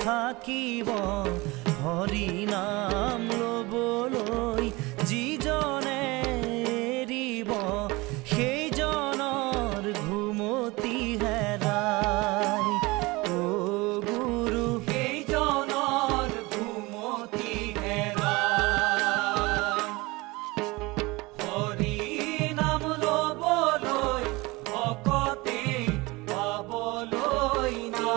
থাকিব, হৰি নাম লবলৈ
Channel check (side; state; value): left; quieter; 23.1 dB